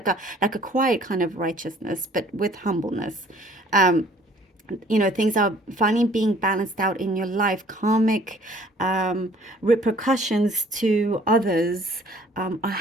a quiet kind of righteousness, but with humbleness. You know, things are finally being balanced out in your life. Karmic repercussions to others are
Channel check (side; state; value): both; normal; correlation 0.56